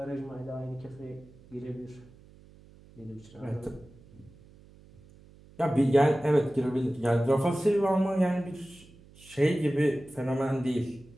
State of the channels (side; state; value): right; noise; hum, 24 dB below the sound